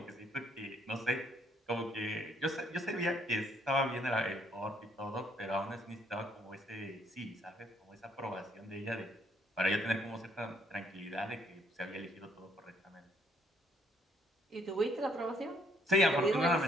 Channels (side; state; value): both; normal; correlation 0.68